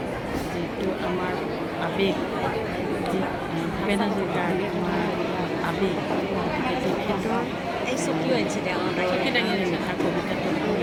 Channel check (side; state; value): both; identical; correlation 1.00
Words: যিটো আমাৰ আৱেগ, যি ভূপেন হাজৰিকাৰ আমাৰ আৱেগ, গতিকে তেখেতৰ এই চকীও আনিছে দে চকী দাঙি আনিছে তাৰ কবিতাটো